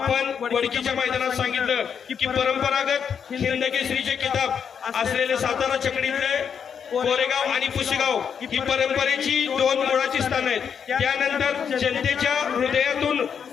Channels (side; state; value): right; quieter; 7.3 dB